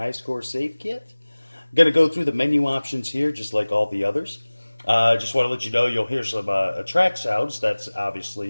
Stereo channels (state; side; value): inverted; both; correlation -1.00